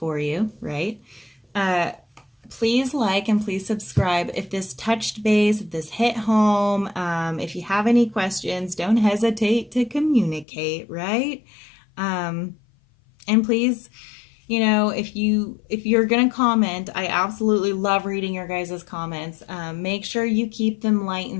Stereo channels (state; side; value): drops out; right; at 10.5 s